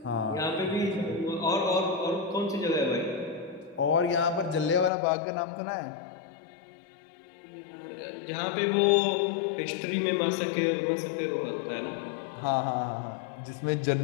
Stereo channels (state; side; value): drops out; right; at 4.9 s